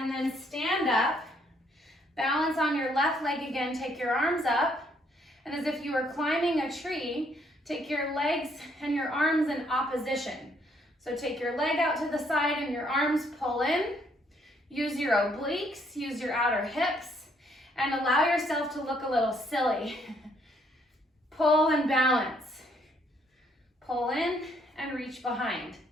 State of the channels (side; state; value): both; normal; correlation 0.68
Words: then stand up, balance on your left leg again, take your arms up, and as if you were climbing a tree, take your legs and your arms in opposition. So take your leg out to the side and your arms pull in. Use your obliques, use your outer hips, and allow yourself to look a little silly. Pull and balance. Pull in and reach behind.